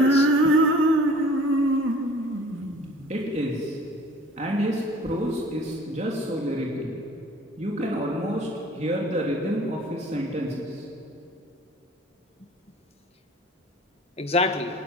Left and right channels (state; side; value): normal; both; correlation 0.49